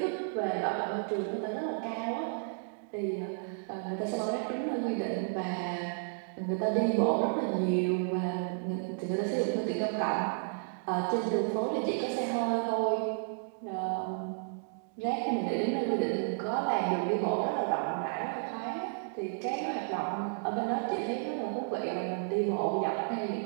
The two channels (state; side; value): silent; left; digital silence